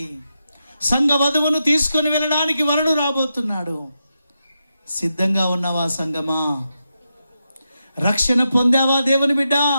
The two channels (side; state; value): both; inverted; correlation -0.87